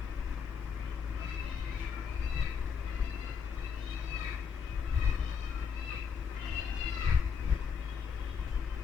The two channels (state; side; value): quieter; right; 6.5 dB